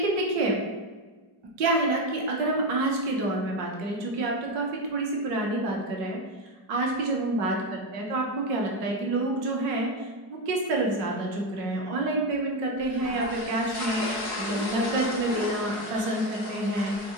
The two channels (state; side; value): late; left; 4.7 ms